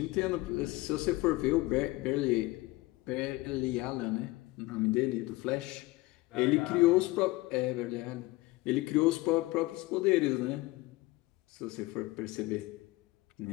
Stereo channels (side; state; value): right; quieter; 20.7 dB